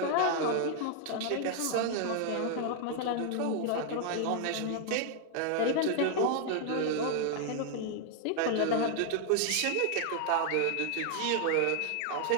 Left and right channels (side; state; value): both; different; correlation 0.00